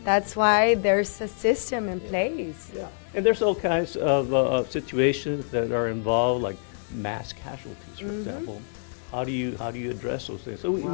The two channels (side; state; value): right; silent; digital silence